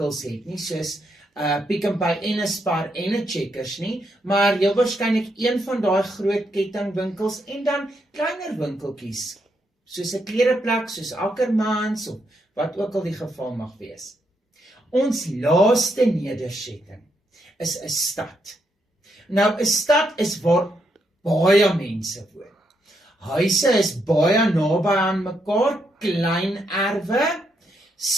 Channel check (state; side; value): normal; both; correlation 0.79